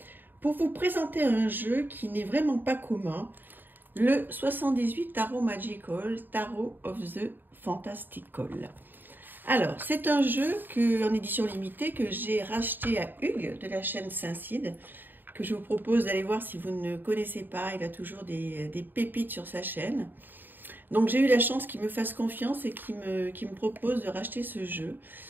pour vous présenter un jeu qui n'est vraiment pas commun, le 78 Tarot Magical, Tarot of the Fantastical. Alors, c'est un jeu en édition limitée que j'ai racheté à Hugues de la chaîne Saint-Cide, que je vous propose d'aller voir si vous ne connaissez pas. Il a toujours des pépites sur sa chaîne. Donc j'ai eu la chance qu'il me fasse confiance et qu'il me propose de racheter ce jeu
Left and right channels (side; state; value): left; late; 0.092 ms